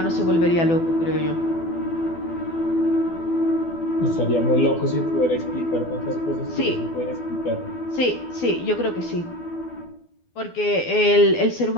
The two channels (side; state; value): right; late; 12 ms